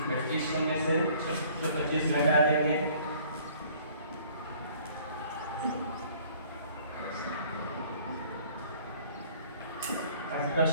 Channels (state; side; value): inverted; both; correlation -0.55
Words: में से 625 घटा देंगे,